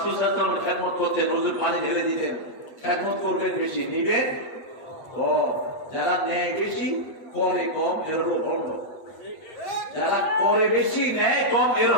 সাল্লাল্লাহু আলাইহি ওয়াসাল্লাম খেদমত করতেন, রোজের পানি ঢেলে দিতেন। খেদমত করবেন বেশি, নিবেন কম। যারা নেয় বেশি করে কম, এর হলো ভণ্ড। যারা করে বেশি নেয় কম, এর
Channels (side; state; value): right; late; 7.8 ms